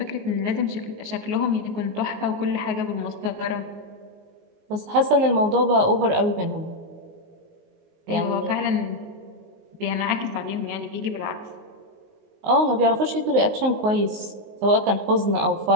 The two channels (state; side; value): late; left; 19 ms